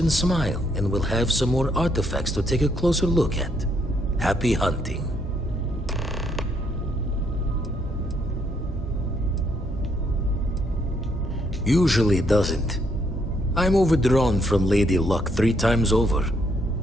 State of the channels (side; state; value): both; normal; correlation 0.72